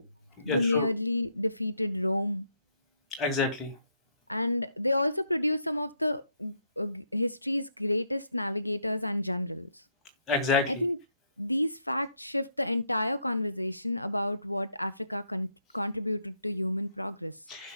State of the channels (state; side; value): inverted; both; correlation -0.75